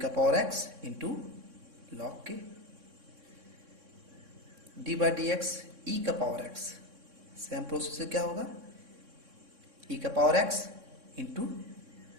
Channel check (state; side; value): late; left; 3.6 ms